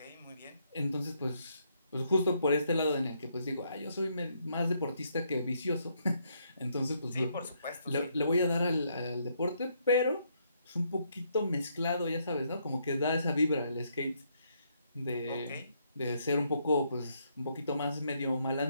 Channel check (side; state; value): both; inverted; correlation -0.74